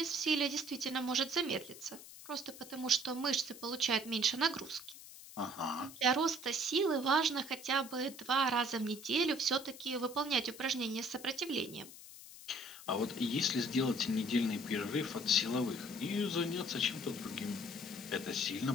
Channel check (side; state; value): left; noise; hiss, 16 dB below the sound